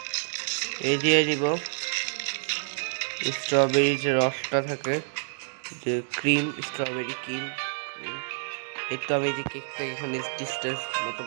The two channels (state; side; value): silent; left; 59 dB below the other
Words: দিয়ে দিব স্ট্রবেরি যে রসটা থাকে যে ক্রিম স্ট্রবেরি ক্রিম স্ট্রবেরি কেকটা এখানে মতো